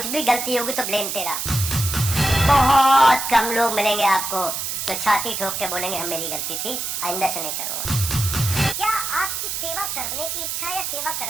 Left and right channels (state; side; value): noise; right; hiss, 3 dB below the sound